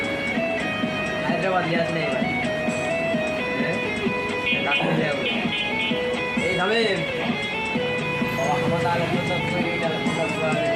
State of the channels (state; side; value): identical; both; correlation 1.00